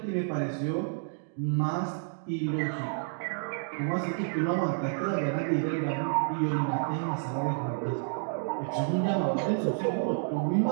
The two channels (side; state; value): left; silent; digital silence